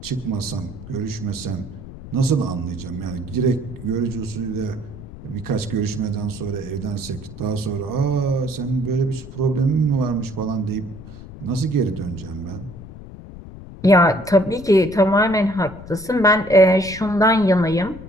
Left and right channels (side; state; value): left; noise; rumble, 15 dB below the sound